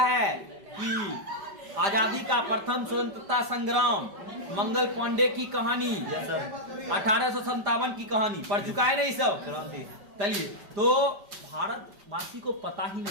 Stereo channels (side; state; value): left; late; 5.1 ms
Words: कि आजादी का प्रथम स्वतंत्रता संग्राम, मंगल पांडे की कहानी, 1857 की कहानी पढ़ चुका है ना ये सब। चलिए, तो भारतवासी को पता ही